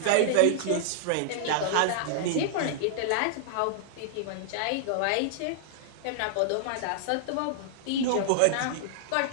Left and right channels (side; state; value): both; different; correlation -0.01